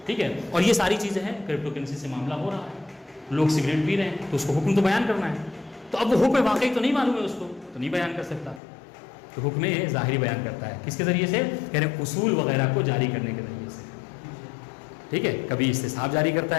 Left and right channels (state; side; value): drops out; right; at 8.6 s